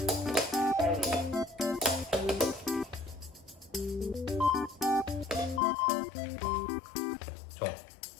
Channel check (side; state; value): right; drops out; at 5.6 s